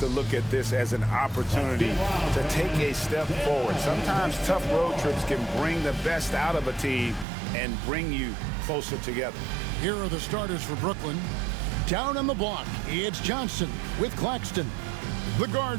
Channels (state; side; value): drops out; left; at 7.2 s